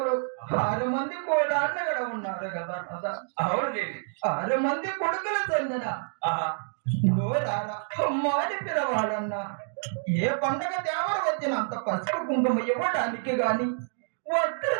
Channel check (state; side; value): silent; left; digital silence